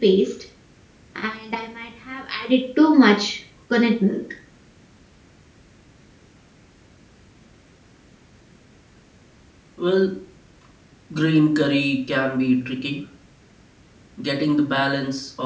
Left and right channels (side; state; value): both; identical; correlation 1.00